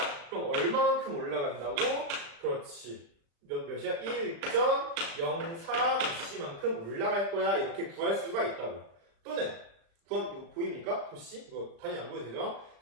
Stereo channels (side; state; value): left; late; 36 ms